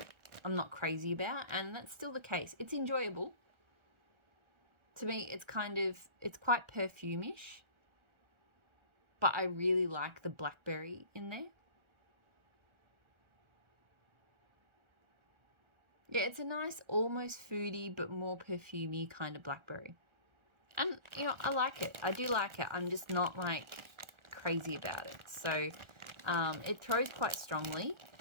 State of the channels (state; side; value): late; left; 1.4 ms